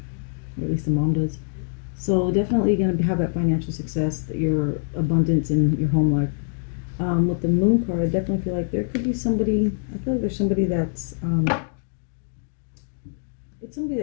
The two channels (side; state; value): right; silent; digital silence